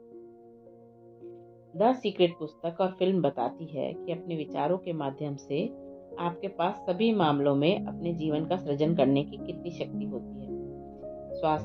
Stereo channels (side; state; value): both; identical; correlation 1.00